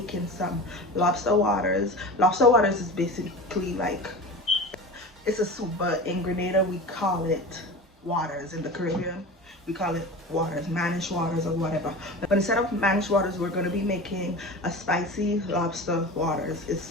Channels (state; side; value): normal; both; correlation 0.32